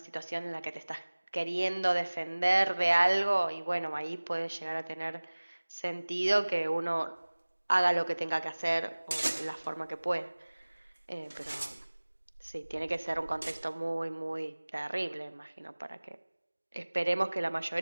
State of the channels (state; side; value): inverted; both; correlation -1.00